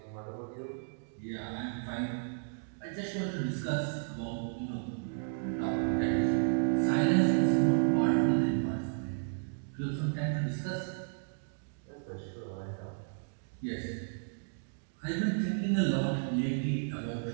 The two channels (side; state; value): left; silent; digital silence